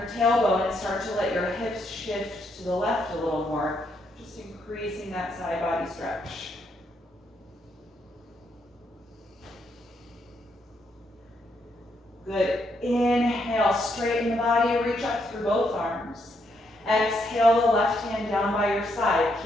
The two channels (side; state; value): both; normal; correlation 0.76